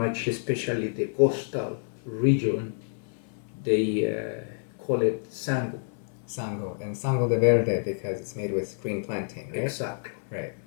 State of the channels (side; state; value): right; silent; 59 dB below the other